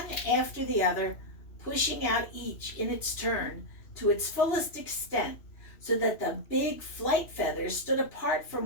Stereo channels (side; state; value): right; late; 2.9 ms